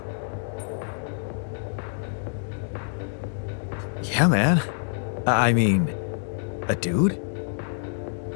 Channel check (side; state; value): right; silent; 60 dB below the other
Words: Yeah, man. I mean, a dude?